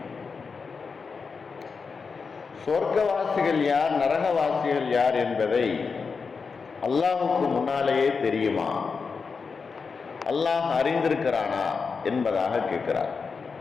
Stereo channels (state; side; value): quieter; right; 5.1 dB